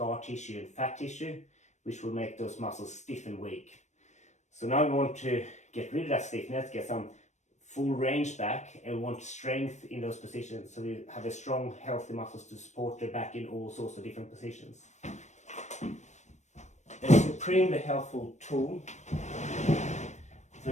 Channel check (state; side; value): late; right; 0.34 ms